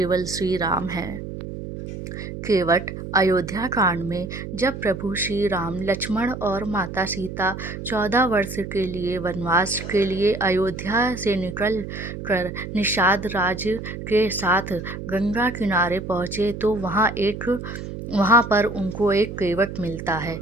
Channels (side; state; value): right; noise; hum, 8 dB below the sound